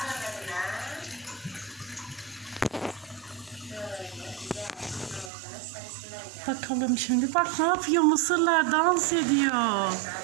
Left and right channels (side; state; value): left; drops out; at 5.3 s